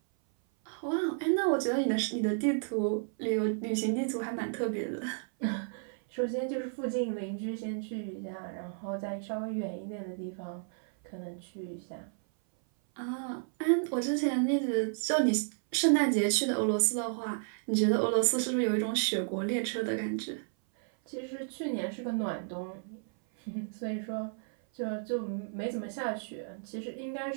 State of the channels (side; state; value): left; silent; 56 dB below the other